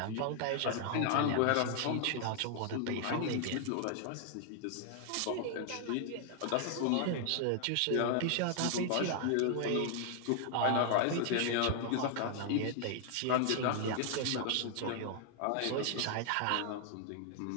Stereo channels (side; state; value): both; different; correlation 0.00